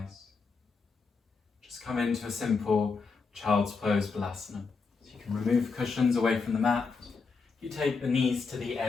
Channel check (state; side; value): quieter; right; 4.7 dB